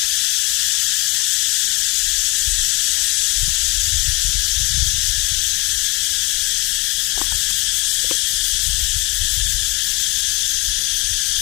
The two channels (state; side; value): quieter; right; 26.0 dB